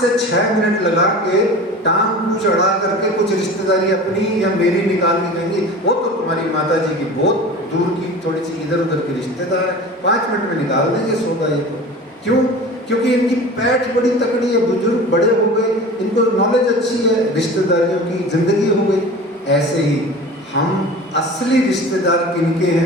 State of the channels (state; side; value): normal; both; correlation 0.37